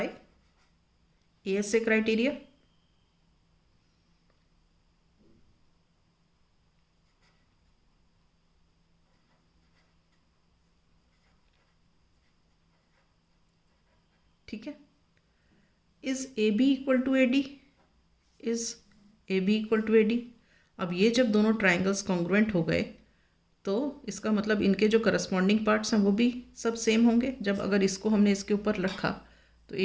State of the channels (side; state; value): both; identical; correlation 1.00